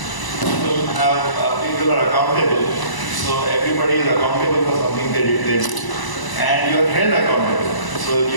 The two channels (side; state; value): right; late; 1.0 ms